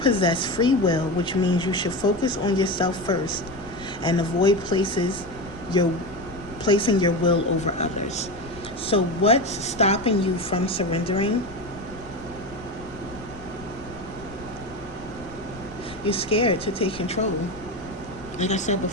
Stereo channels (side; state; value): left; noise; rumble, 18 dB below the sound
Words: free will, which means you should focus on yourself first and avoid placing your will over others. So what's stopping you from surrendering? You're scared to take control. Like I said